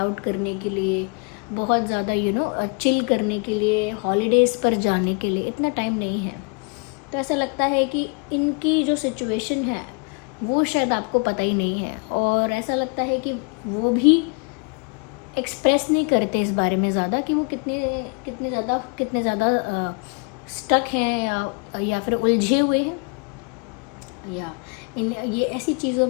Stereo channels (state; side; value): quieter; right; 34.1 dB